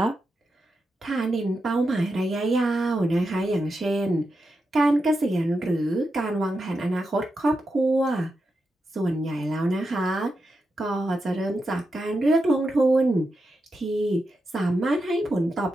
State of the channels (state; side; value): normal; both; correlation 0.88